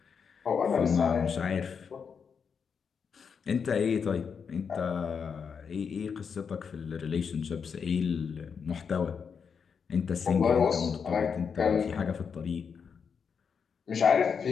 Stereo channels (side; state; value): right; quieter; 6.3 dB